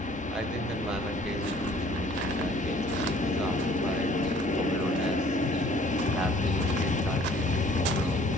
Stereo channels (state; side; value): normal; both; correlation 0.55